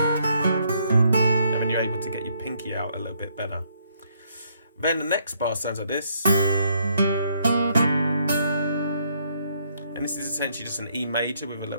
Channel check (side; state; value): both; inverted; correlation -0.71